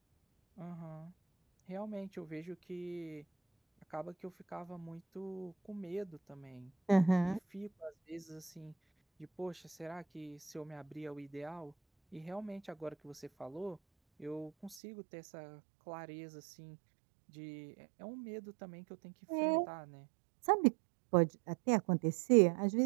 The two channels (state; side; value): drops out; left; at 14.8 s